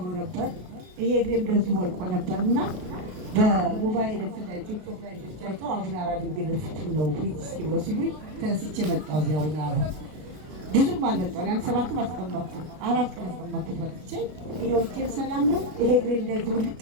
ነበር። ይሄ እግሬ እንደዚህ ወልቆ ነበርና በሞባይል ቲክቶክ ላይ አይተው አቡነ አራ ድንግል ፍቱን ነው ፊት እስኪ ብሎ ሲሉኝ ተነስቼ መጣሁ። እዚያ አቡነ አራ ብዙም አልመጣሁ። ያን 7 አስቀመጥኩ 4 ቀን አስቀመጥኩ። መጥቼ ይሄው እጄ ሰላም ነው። ይሄ እግሬ እንደዚህ ውልቅ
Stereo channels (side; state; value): left; late; 33 ms